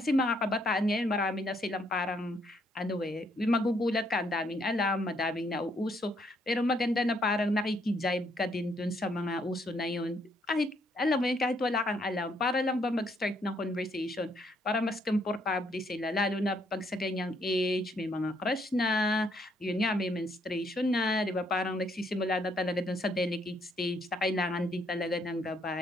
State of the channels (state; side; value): normal; both; correlation 0.71